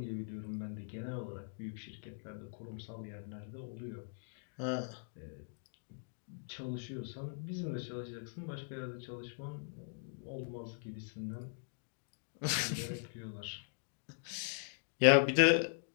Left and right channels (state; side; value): silent; right; digital silence